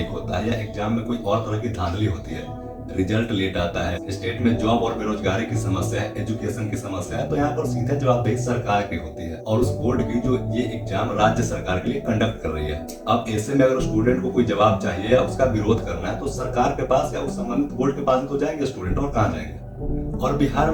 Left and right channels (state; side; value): identical; both; correlation 1.00